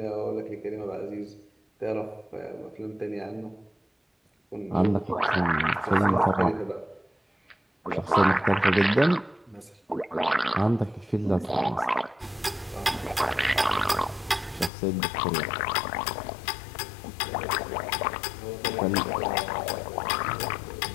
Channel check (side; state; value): right; drops out; at 14.7 s